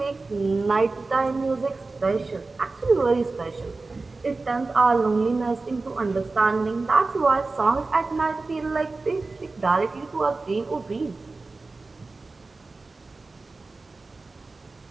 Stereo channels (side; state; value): left; quieter; 3.6 dB